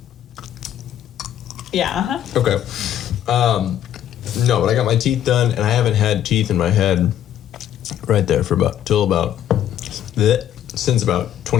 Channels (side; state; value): right; quieter; 10.9 dB